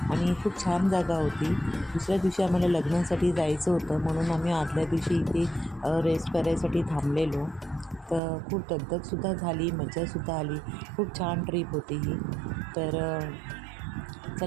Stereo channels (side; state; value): left; drops out; at 8.2 s